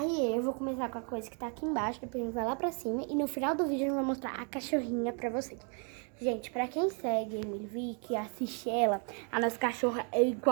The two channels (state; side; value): quieter; left; 39.2 dB